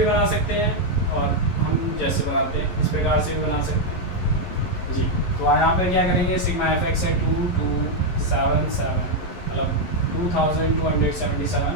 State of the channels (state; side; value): late; right; 11 ms